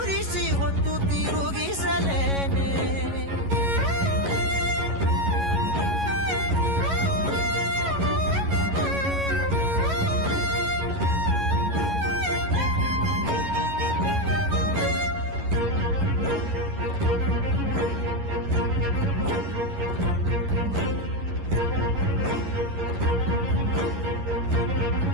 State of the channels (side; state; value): left; late; 11 ms